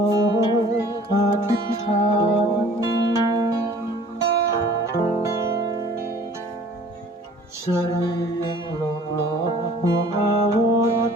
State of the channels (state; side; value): normal; both; correlation 0.51